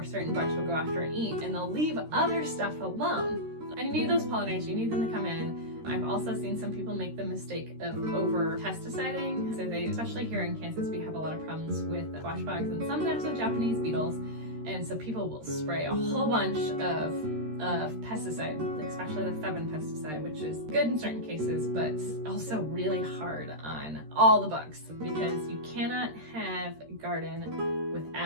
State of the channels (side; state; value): left; late; 13 ms